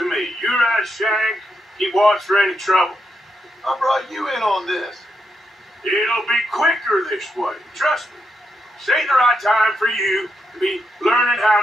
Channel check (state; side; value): normal; both; correlation 0.82